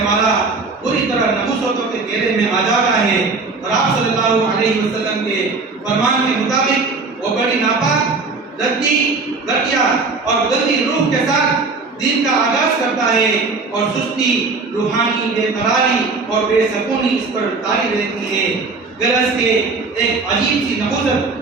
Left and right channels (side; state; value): left; quieter; 4.0 dB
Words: والا پوری طرح نحوستوں کے گھیرے میں آ جاتا ہے، اور آپ صلی اللہ علیہ وسلم کے فرمان کے مطابق وہ بڑی ناپاک، ردی، گھٹیا اور گندی روح کے ساتھ دن کا آغاز کرتا ہے، اور سستی، روحانی بے قراری اور بے سکونی اس پر طاری رہتی ہے۔ گرز کے ایک عجیب سی